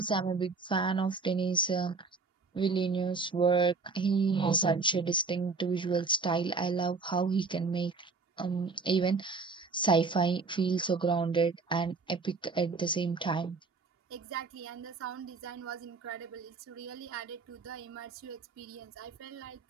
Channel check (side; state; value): left; quieter; 4.2 dB